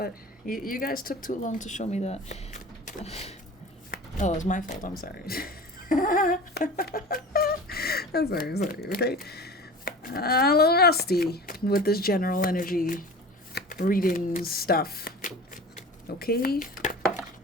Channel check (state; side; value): normal; both; correlation 0.37